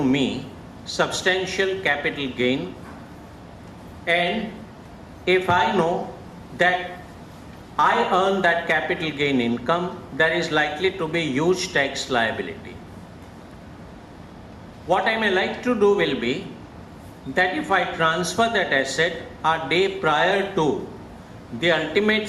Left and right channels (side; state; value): both; identical; correlation 1.00